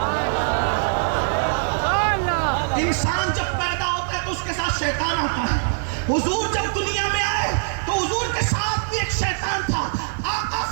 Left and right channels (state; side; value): silent; left; digital silence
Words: انسان جب پیدا ہوتا ہے تو اس کے ساتھ شیطان آتا ہے. حضور جب دنیا میں آئے تو حضور کے ساتھ بھی ایک شیطان تھا. آقا